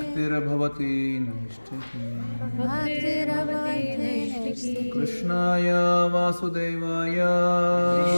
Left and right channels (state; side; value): inverted; both; correlation -1.00